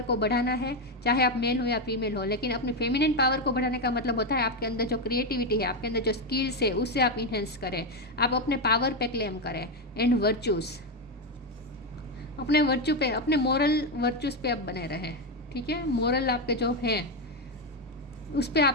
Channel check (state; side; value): normal; both; correlation 0.08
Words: को बढ़ाना है, चाहे आप मेल हो या फीमेल हो। लेकिन अपनी फेमिनिन पावर को बढ़ाने का मतलब होता है आपके अंदर जो क्रिएटिविटी है, आपके अंदर जो स्किल्स है, उससे आप इन्हेंस करें, आप अपने पावर पे क्लेम करें। एंड वर्चूज, अपने वर्चू पे, अपने मोरल वर्चूज पे आप बने रहें, ठीक है। मोरल आपके जो हैं उस पर